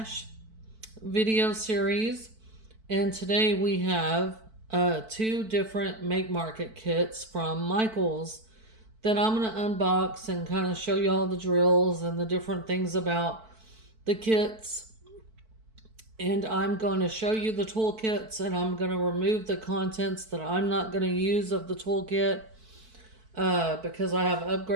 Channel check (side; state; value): left; late; 4.5 ms